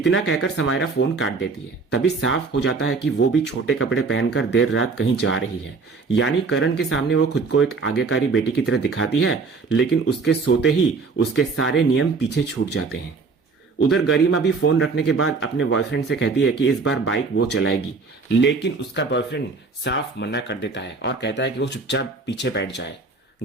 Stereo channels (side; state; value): left; quieter; 4.4 dB